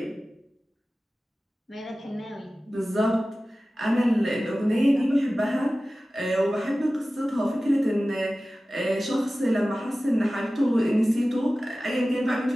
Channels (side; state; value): both; normal; correlation 0.96